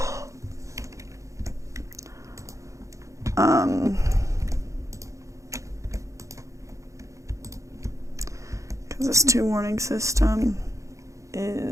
Because this 2 warning system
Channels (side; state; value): left; late; 0.15 ms